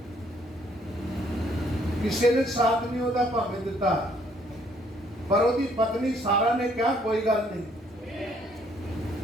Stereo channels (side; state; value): both; normal; correlation 0.65